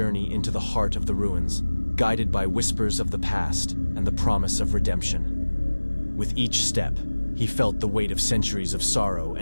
into the heart of the ruins, guided by whispers of the past and the promise of redemption. With each step, he felt the weight of centuries of sorrow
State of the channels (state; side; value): inverted; both; correlation -1.00